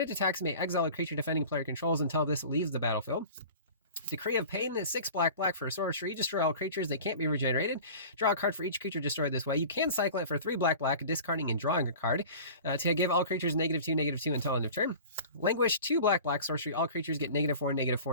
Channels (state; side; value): inverted; both; correlation -0.39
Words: attacks, it may exile a creature defending player controls until this leaves the battlefield. Decree of Pain, 6 black for a sorcery. Destroy all creatures. They can't be regenerated. Draw a card for each creature destroyed this way. You can cycle it for 3 black, discarding and drawing a card to give all creatures -2/-2 until end of turn. Languish, 2 black sorcery. All creatures get -4/-4